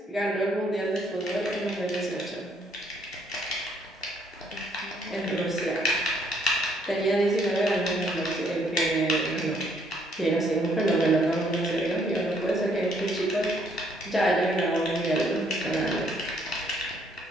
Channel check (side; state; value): both; normal; correlation 0.67